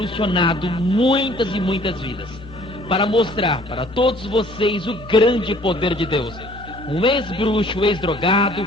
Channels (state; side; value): noise; left; hum, 17 dB below the sound